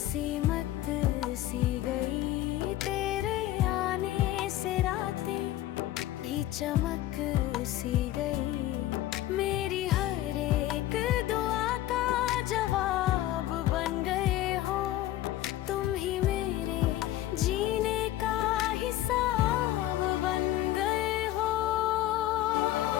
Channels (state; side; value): quieter; right; 14.4 dB